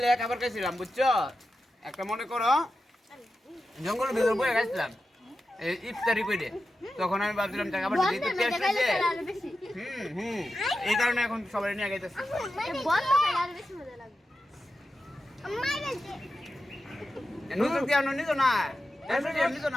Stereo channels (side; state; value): both; normal; correlation 0.91